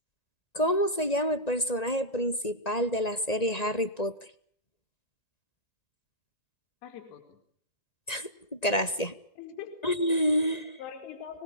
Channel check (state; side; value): late; right; 1.9 ms